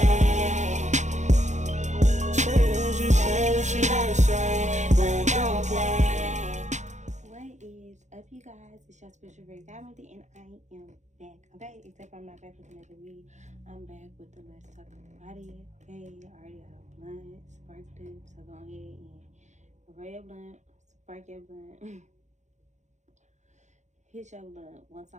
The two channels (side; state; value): left; late; 0.34 ms